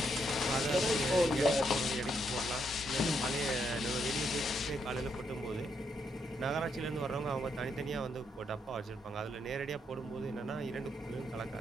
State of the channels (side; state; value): both; normal; correlation 0.77